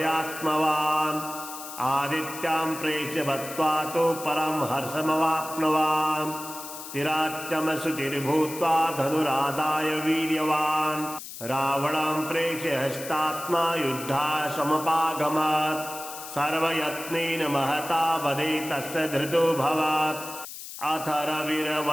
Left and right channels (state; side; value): noise; left; hiss, 11 dB below the sound